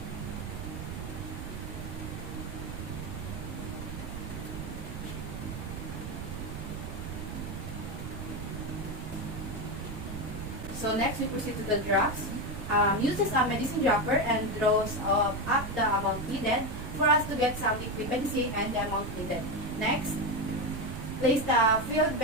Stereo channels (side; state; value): right; noise; rumble, 7 dB below the sound